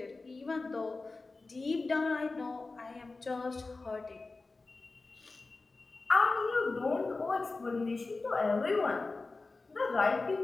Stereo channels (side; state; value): right; quieter; 3.6 dB